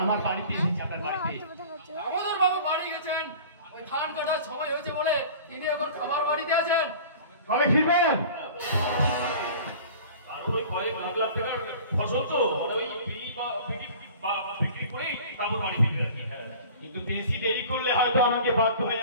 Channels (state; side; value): inverted; both; correlation -0.42